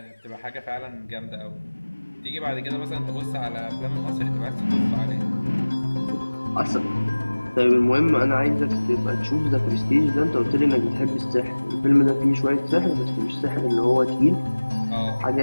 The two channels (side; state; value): both; inverted; correlation -1.00